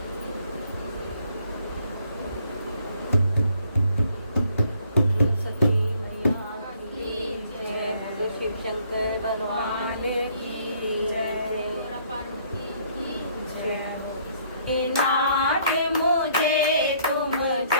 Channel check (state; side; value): inverted; both; correlation -0.64